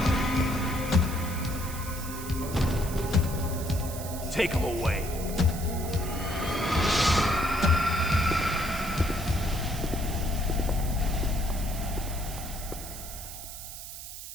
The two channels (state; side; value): noise; right; hiss, 11 dB below the sound